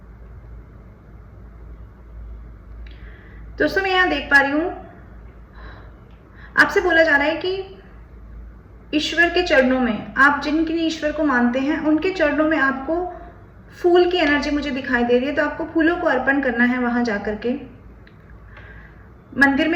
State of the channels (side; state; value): both; identical; correlation 1.00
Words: दोस्तों मैं यहाँ देख पा रही हूँ, आपसे बोला जा रहा है कि ईश्वर के चरणों में, आप जिनके ईश्वर को मानते हैं उनके चरणों में आपको फूल की एनर्जी मुझे दिखाई दे रही है। तो आपको फूलों को अर्पण करना है। वहां जाकर के मंदिर